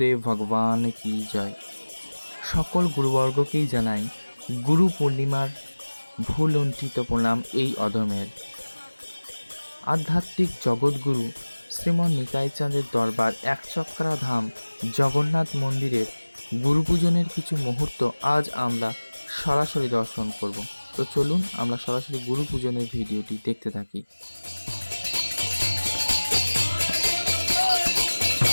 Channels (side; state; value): both; inverted; correlation -1.00